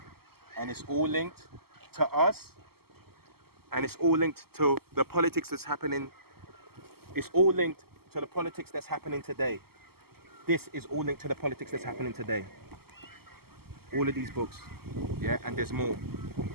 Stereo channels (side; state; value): left; late; 0.95 ms